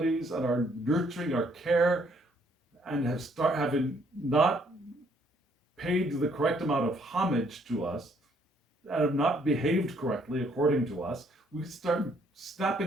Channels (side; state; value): both; normal; correlation 0.67